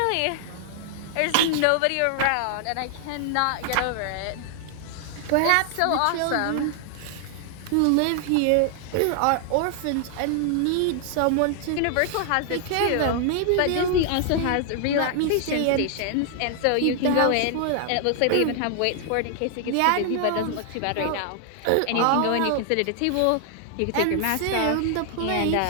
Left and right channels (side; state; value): both; different; correlation 0.00